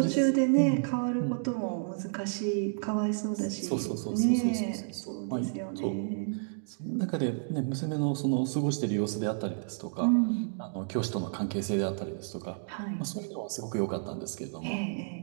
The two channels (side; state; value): left; silent; digital silence